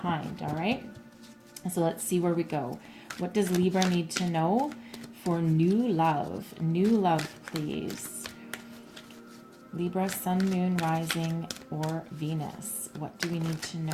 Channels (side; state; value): both; identical; correlation 1.00